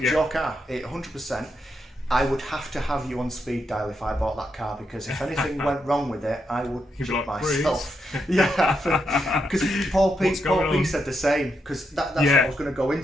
was your car, 100%. I would have to have you on speed dial if I bought that car, because if anything went wrong with it, I would shit myself. Because Paul P said the same, because that's what I was going to go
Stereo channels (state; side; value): normal; both; correlation 0.82